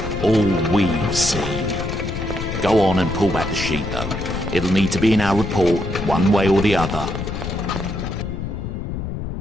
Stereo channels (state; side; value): noise; left; rumble, 5 dB below the sound